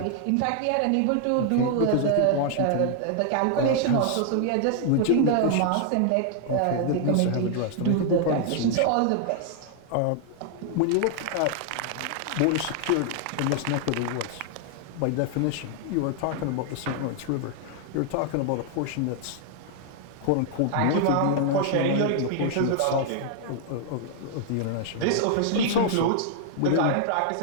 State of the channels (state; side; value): different; both; correlation 0.00